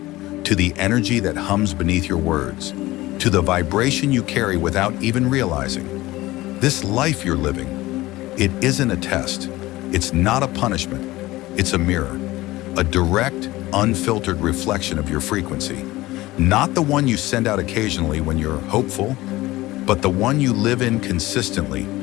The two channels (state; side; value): quieter; right; 18.4 dB